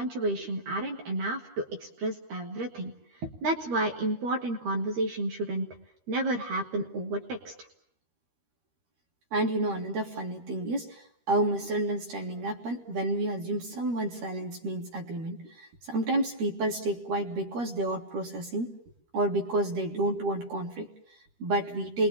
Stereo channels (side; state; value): left; late; 13 ms